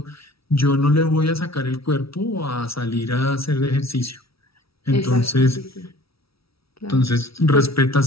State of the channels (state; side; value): late; right; 0.76 ms